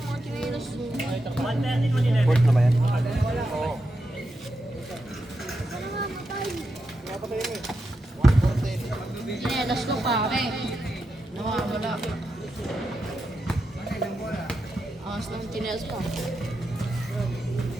Port na ba yan? Oo. Sinelas ko pare. Nawawala. Angas ng chinelas pa.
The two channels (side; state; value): both; normal; correlation 0.87